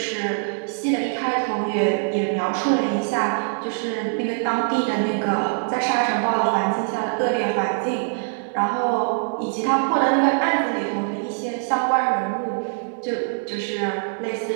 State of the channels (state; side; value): silent; left; 63 dB below the other